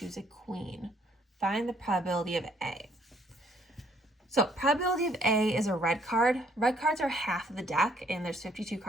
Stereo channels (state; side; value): normal; both; correlation 0.65